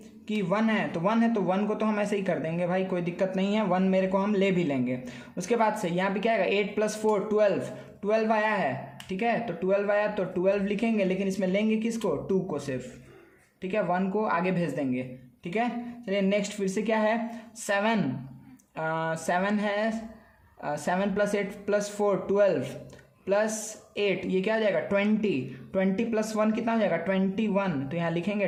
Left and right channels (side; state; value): both; identical; correlation 1.00